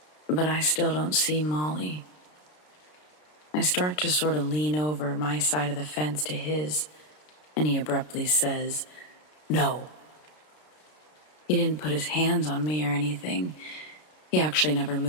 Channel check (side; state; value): right; late; 33 ms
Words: but I still don't see Molly. I start to sort of lean over my side of the fence to his, and he abruptly says, "No." He didn't put his hands on me or anything. He actually never